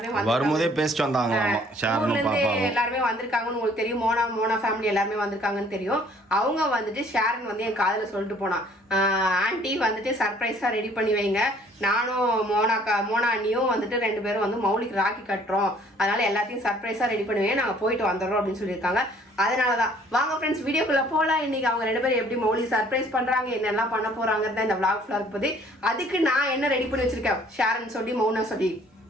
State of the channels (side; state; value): both; normal; correlation 0.58